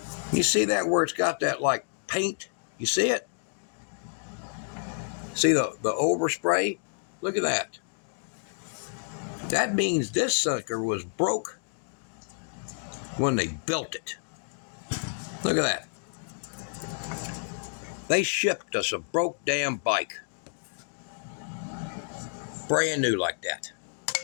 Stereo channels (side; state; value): right; silent; digital silence